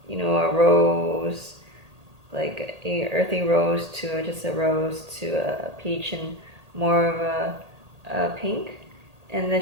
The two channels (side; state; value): left; late; 1.8 ms